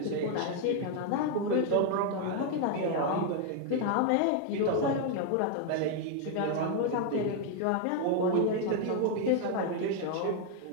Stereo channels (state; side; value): different; both; correlation 0.01